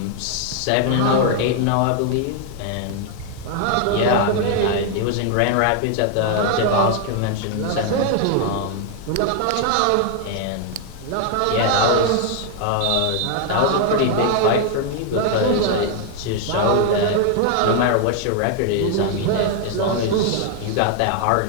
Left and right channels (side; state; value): both; different; correlation 0.00